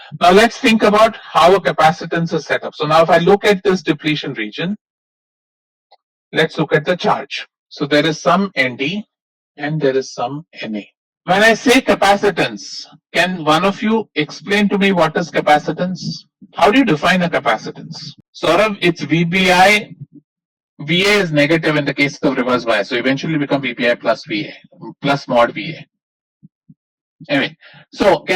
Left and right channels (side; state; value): both; identical; correlation 1.00